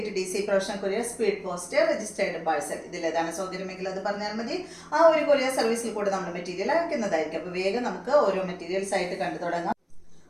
professional courier, speed post, registered parcel. ഇതിലേതാണ് സൗകര്യമെങ്കിൽ അത് പറഞ്ഞാൽ മതി. ആ ഒരു കൊറിയർ സർവീസിൽ കൂടെ നമ്മൾ മെറ്റീരിയൽ അയക്കുന്നതായിരിക്കും. അപ്പോൾ വേഗം നമുക്ക് ഓരോ മെറ്റീരിയൽസ് ആയിട്ട് കണ്ടു തുടങ്ങാം.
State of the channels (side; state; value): both; identical; correlation 1.00